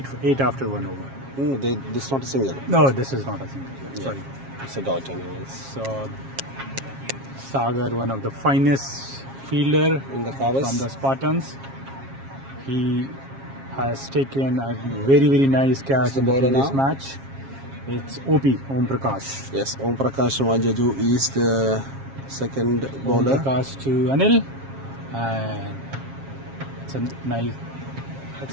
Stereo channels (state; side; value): late; left; 7.4 ms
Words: after 1 over. This is not a single. No, this is not a single. Yeah, sorry. It's a dot anyways. So Sagar, one of the finest fielder In the covers. from the Spartans, he has taken a very nice catch the in the bowler previous now? match. It's Om Prakash. Yes, Om Prakash Majaju is the second Om bowler. Prakash to Anil, and it's a nice.